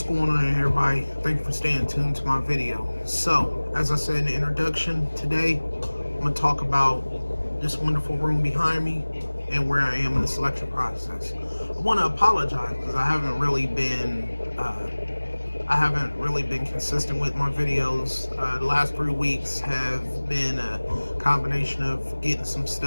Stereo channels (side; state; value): both; inverted; correlation -1.00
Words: going on, everybody? Thank you for staying tuned to my video. So, as I said in the introduction, today I'm going to talk about this wonderful room behind me and where I am in the selection process. I want to apologize because I haven't really been consistent with my videos. The last 3 weeks have been a combination of getting some